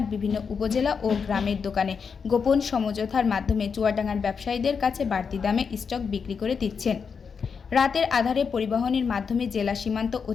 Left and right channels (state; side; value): quieter; right; 6.0 dB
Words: বিভিন্ন উপজেলা ও গ্রামের দোকানে। গোপন সমঝোতার মাধ্যমে চুয়াডাঙ্গার ব্যবসায়ীদের কাছে বাড়তি দামে স্টক বিক্রি করে দিচ্ছেন। রাতের আধারে পরিবহনের মাধ্যমে জেলা সীমান্ত